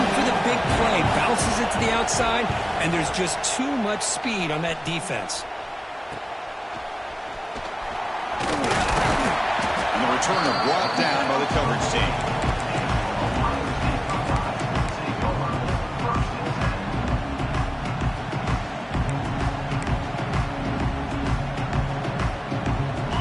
for the big play, bounces it to the outside, and there's just too much speed on that defense. And the returner brought down by the coverage team.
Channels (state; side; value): identical; both; correlation 1.00